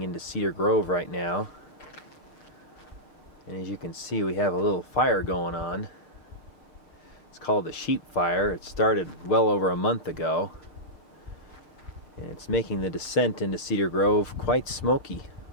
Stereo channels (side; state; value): right; late; 6.6 ms